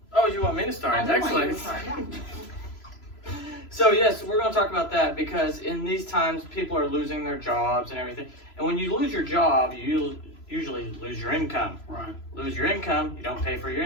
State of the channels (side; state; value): right; late; 3.0 ms